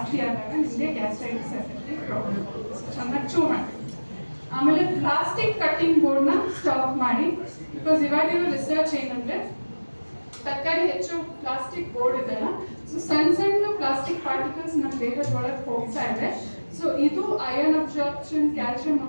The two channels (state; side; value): inverted; both; correlation -1.00